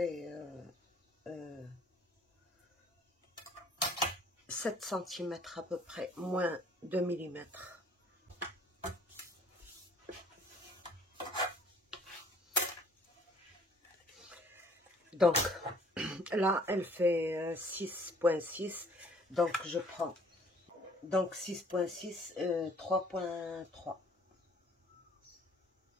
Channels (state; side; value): normal; both; correlation 0.58